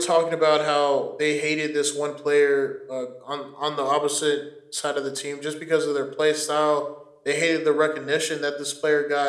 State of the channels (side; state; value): both; identical; correlation 1.00